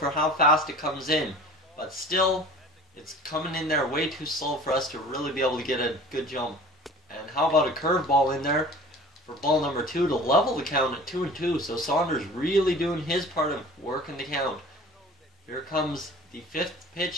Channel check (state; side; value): normal; both; correlation 0.44